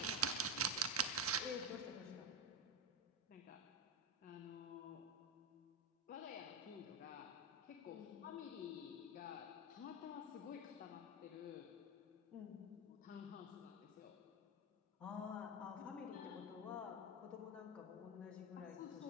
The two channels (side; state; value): both; normal; correlation 0.14